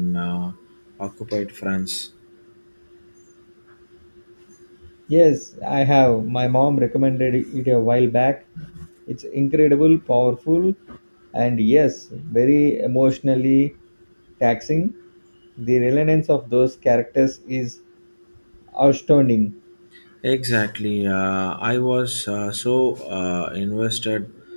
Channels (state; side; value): inverted; both; correlation -1.00